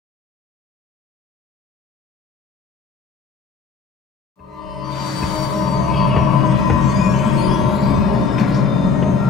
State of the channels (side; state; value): right; quieter; 5.0 dB